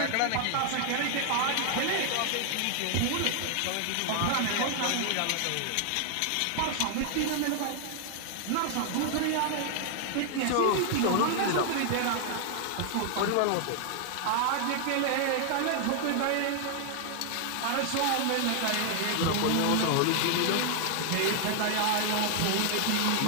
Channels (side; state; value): both; different; correlation 0.00